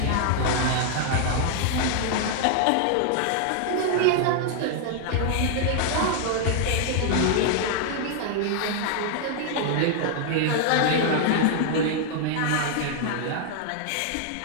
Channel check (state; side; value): different; both; correlation 0.00